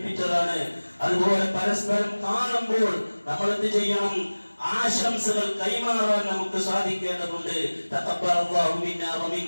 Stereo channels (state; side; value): inverted; both; correlation -1.00